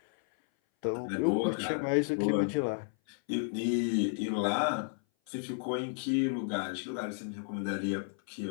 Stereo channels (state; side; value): silent; right; 56 dB below the other